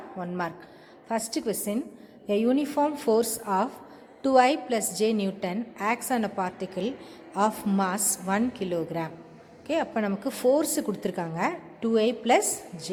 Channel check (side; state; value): both; identical; correlation 1.00